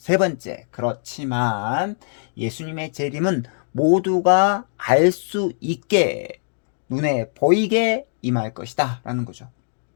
그렇지만 예수님의 재림은 모두가 알 수 있게 눈에 보이게 임할 것이다 라는 거죠.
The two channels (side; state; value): right; silent; digital silence